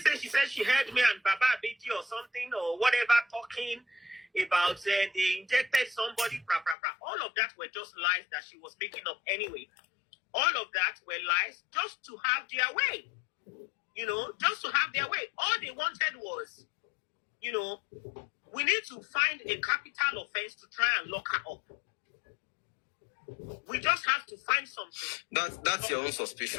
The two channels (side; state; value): right; drops out; at 6.8 s